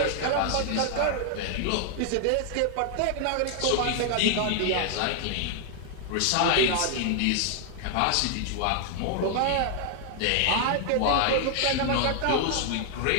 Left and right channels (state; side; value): different; both; correlation 0.00